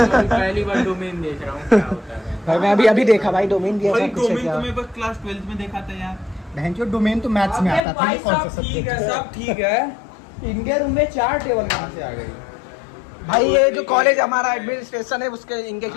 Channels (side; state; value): right; drops out; at 7.8 s